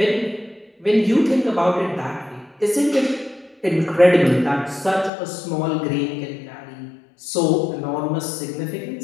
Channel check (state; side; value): drops out; right; at 5.1 s